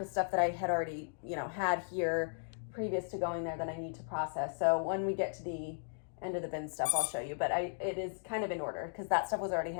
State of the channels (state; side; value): silent; right; digital silence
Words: is stuff that I had already, had here previous to going there that I need to process. So when we get to the end of the bin stuff, I'll show you. But it is kind of in order because that stuff was already